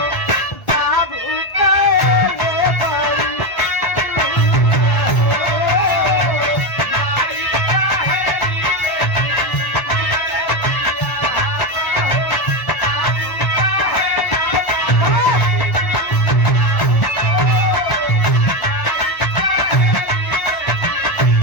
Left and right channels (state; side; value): late; right; 1.3 ms